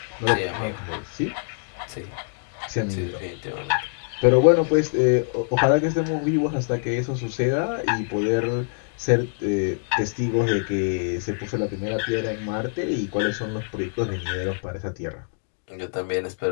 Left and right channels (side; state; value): right; silent; digital silence